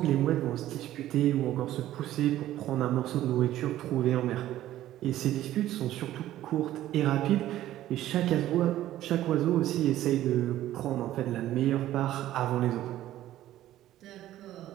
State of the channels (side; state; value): left; quieter; 13.7 dB